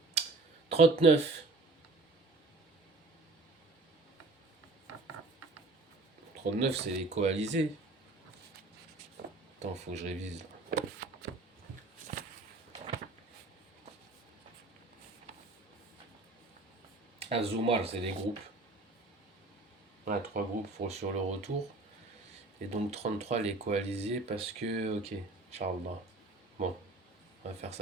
39. 39, c'est les coalisés. Attends, faut que je révise. Azumar, c'est les groupes. Ouais, 3 groupes sur le retour. Et donc 33 les coalisés parce que, ok, Inch'Allah. Bon, on va faire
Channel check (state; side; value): quieter; left; 3.3 dB